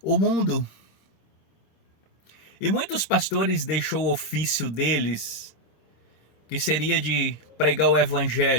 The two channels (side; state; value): right; late; 26 ms